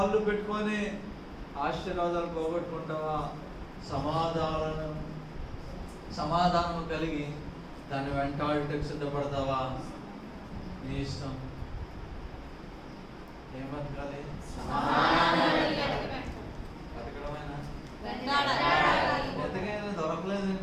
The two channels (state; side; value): identical; both; correlation 1.00